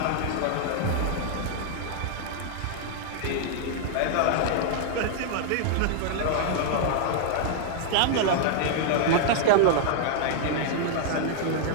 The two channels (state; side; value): different; both; correlation 0.00